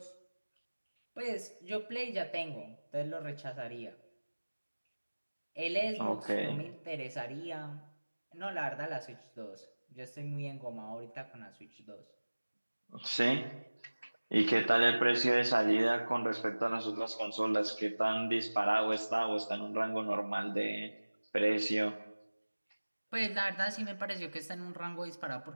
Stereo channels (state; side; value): inverted; both; correlation -1.00